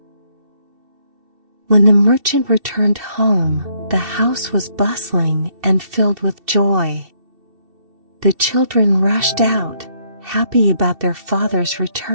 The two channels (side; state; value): left; late; 2.7 ms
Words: When the merchant returned home, the house was bustling and filled with joy. The children rushed out, happy about their father's